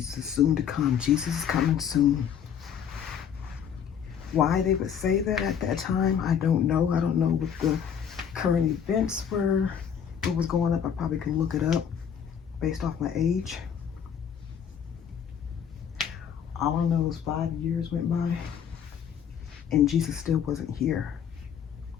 is soon to come. Jesus is coming soon. Why they would say that at that time, I don't know. I don't know what the current events were, what was going up. I probably could look it up based off my age. All I know is 5 years went by and Jesus still wasn't here.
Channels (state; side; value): quieter; right; 8.1 dB